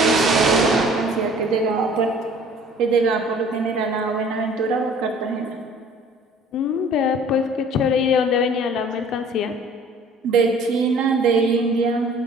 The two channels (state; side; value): normal; both; correlation 0.51